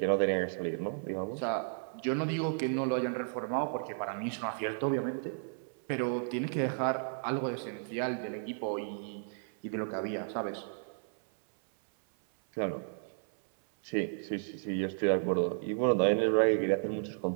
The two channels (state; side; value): silent; left; 56 dB below the other